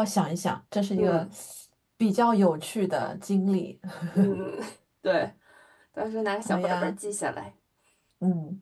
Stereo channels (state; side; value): identical; both; correlation 1.00